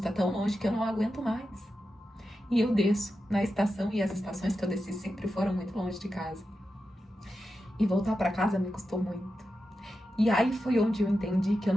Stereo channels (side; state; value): both; normal; correlation 0.90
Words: tão longe que eu não aguento mais. E eu desço na estação. E as estações que eu desci sempre foram muito longe de casa. E voltar pra casa me custou muito. E aí foi onde eu entendi que eu